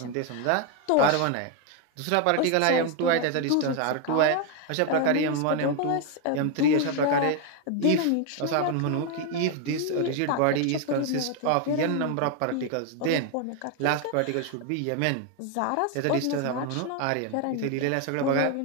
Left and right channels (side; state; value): both; different; correlation 0.01